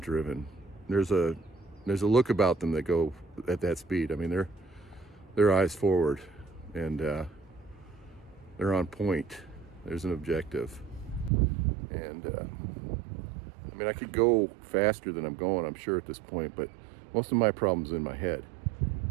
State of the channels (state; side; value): drops out; left; at 11.3 s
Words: There's a look about them that go at that speed. I mean, they're eyes forward, and they're on point. There's an objective. And I mean, I could go faster than I'm going, I'm sure, at this point, but most of my problem's in my head.